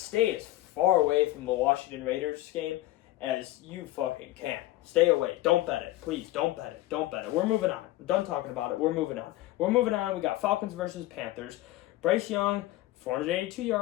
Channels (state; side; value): quieter; right; 16.5 dB